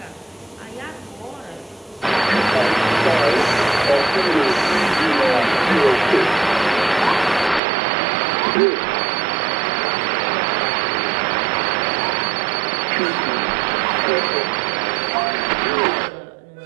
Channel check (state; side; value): drops out; left; at 7.6 s